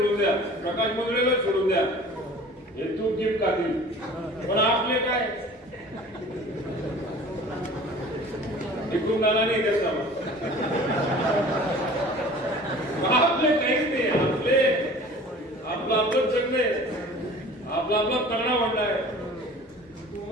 द्या, प्रकाश मुंदळेला सोडून द्या, हे तूप गिफ्ट खातील, पण आपले काय इकडून नाना नाही त्याचा आपले काहीच नाही. आपलं आपलं जगणे, आपला आपला तगडा वाढलाय.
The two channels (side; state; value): both; normal; correlation 0.44